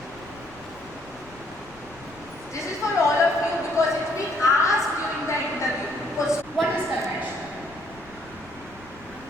This is for all of you because it's been asked during the interview. What is conventional?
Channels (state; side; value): noise; left; rumble, 22 dB below the sound